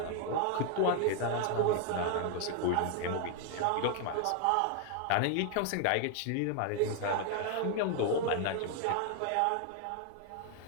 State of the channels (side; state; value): both; different; correlation 0.00